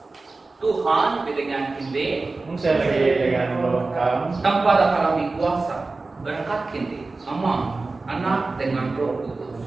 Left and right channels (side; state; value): left; quieter; 3.6 dB